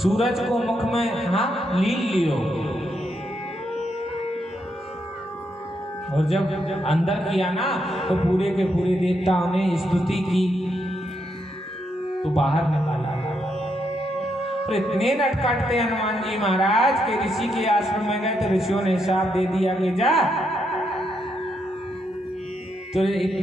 सूरज को मुख में हाँ लील लियो। और जब अंदर किया ना तो पूरे के पूरे देवताओं ने स्तुति की तो बाहर निकाला। और इतने नटखट थे हनुमान जी महाराज के ऋषि के आश्रम में गए तो ऋषियों ने हिसाब दे दिया कि जा तो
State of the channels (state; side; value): normal; both; correlation 0.79